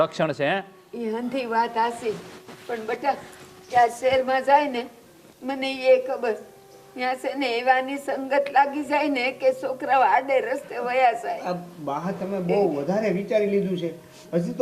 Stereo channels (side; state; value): both; identical; correlation 1.00